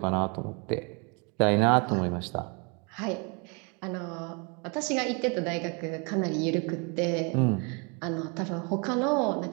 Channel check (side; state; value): left; quieter; 33.4 dB